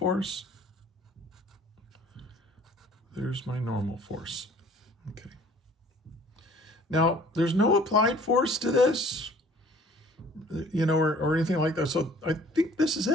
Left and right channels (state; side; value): normal; both; correlation 0.53